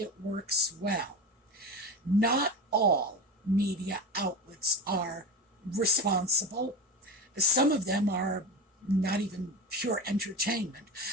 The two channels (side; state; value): both; normal; correlation 0.23